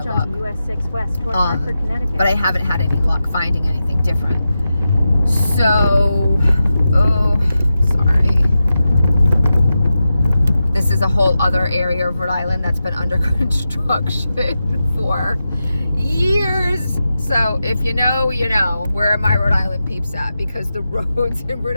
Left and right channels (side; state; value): both; inverted; correlation -0.91